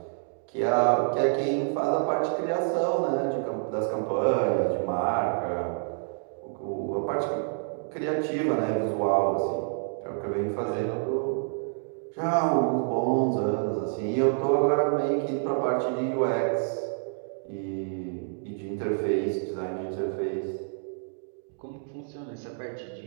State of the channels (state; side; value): silent; left; digital silence